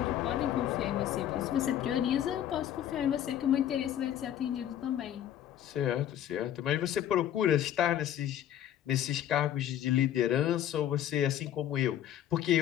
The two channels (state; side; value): quieter; right; 11.0 dB